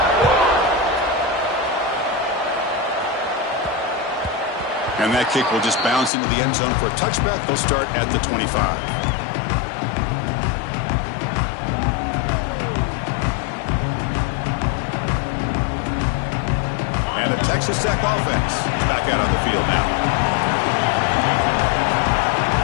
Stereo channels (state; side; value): drops out; right; at 6.1 s